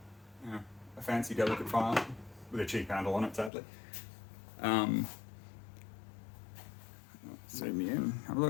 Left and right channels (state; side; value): drops out; right; at 3.5 s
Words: a fancy, delicate file with a cheap handle on it, sadly. Zoom in, have a